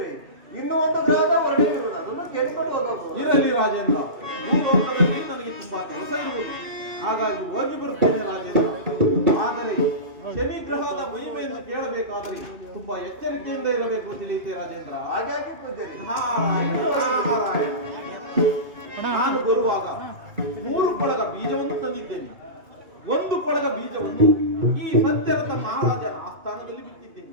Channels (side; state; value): left; late; 2.6 ms